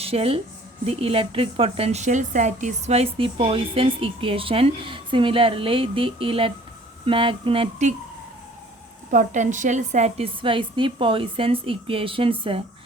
satisfies the Poisson's equation. Similarly, the magnetic potential satisfies the Poisson's equations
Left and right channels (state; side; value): normal; both; correlation 0.53